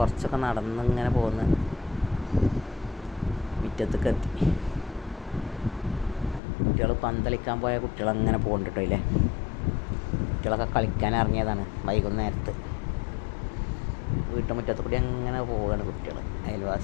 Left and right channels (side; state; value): right; drops out; at 6.4 s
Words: നടന്നിങ്ങനെ പോന്ന് മുറ്റത്തേക്ക് എത്തി. കുട്ടികൾ പന്തളിക്കാൻ പോയ കുട്ടികളങ്ങനെ പോകുന്നുണ്ട് കേട്ടോ. ഇല്ലേ, കുട്ടികളൊക്കെ കളിക്കാൻ ഇറങ്ങിയതാണ് വൈകുന്നേരത്ത്. വീട്ടുമുറ്റത്ത് കൂടി അങ്ങനെ പോവുകയാണ് കുട്ടികൾ,